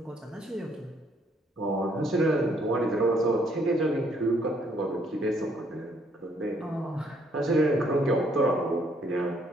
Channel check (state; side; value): normal; both; correlation 0.67